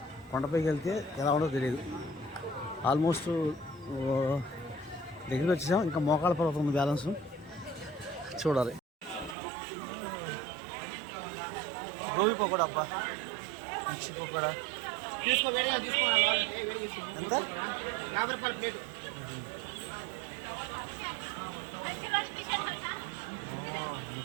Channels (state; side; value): drops out; left; at 9.3 s